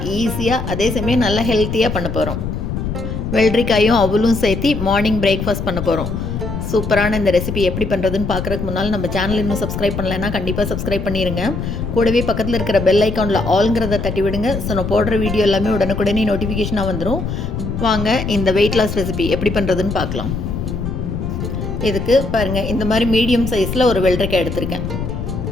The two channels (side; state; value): left; noise; rumble, 4 dB below the sound